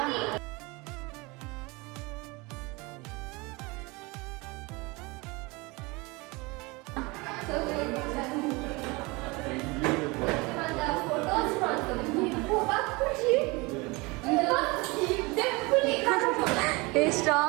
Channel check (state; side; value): quieter; left; 25.3 dB